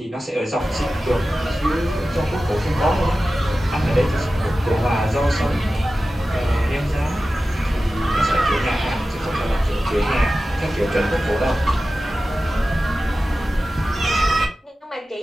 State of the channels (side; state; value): both; normal; correlation 0.94